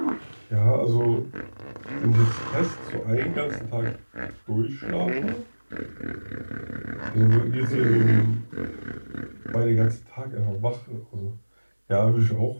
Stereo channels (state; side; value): inverted; both; correlation -1.00